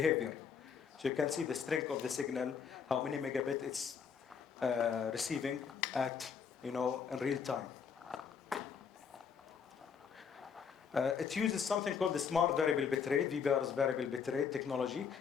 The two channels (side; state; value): right; quieter; 6.7 dB